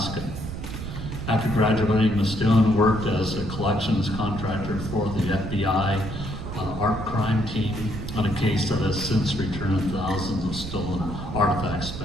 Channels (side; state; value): right; noise; rumble, 7 dB below the sound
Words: After graduating, Ms. Stone worked as a collections contractor for the FBI art crime team on a case that has since returned thousands of stolen artifacts